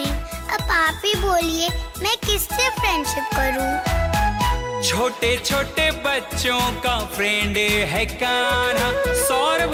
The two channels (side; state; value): both; identical; correlation 1.00